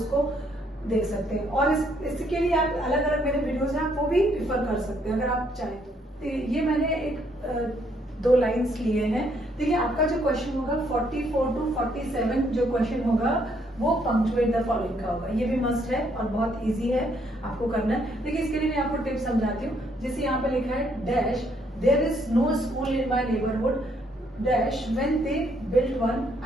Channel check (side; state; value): both; normal; correlation 0.70